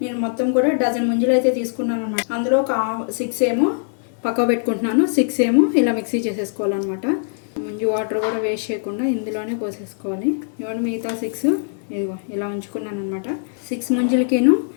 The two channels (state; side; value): silent; right; digital silence